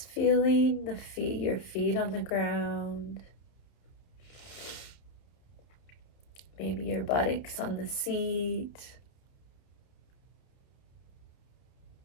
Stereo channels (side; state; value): right; late; 30 ms